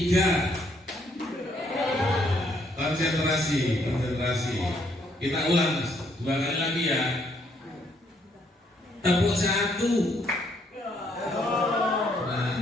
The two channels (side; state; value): both; normal; correlation 0.70